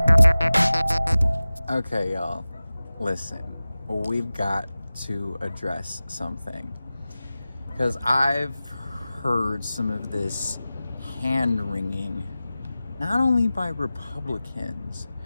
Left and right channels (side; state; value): both; inverted; correlation -0.96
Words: Okay, y'all, listen, we've got to address something, because I've heard some of this hand-wringing, not only by Republicans,